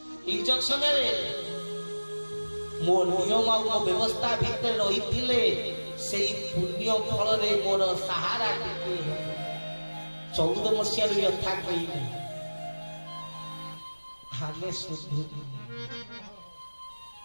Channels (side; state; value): both; inverted; correlation -1.00